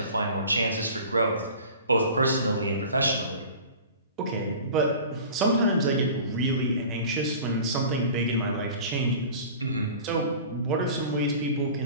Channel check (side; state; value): both; inverted; correlation -0.40